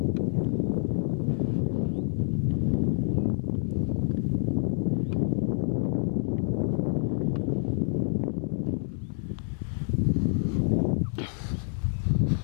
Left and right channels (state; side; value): silent; right; digital silence